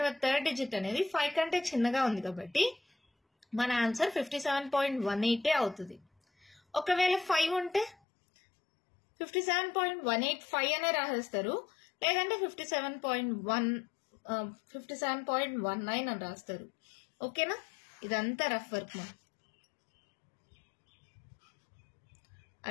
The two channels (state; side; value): drops out; right; at 8.0 s